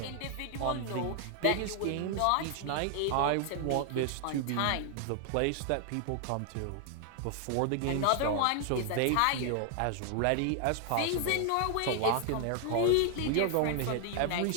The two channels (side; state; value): both; different; correlation 0.00